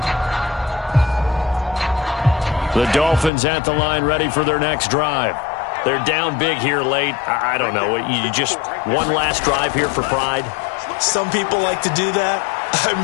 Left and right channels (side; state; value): right; drops out; at 3.3 s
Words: The Dolphins at the line ready for their next drive. They're down big here late. I don't know. You just one last drive here for pride? Some people like to do that. I